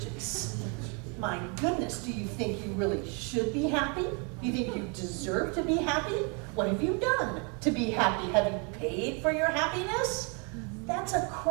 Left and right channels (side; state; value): left; quieter; 35.2 dB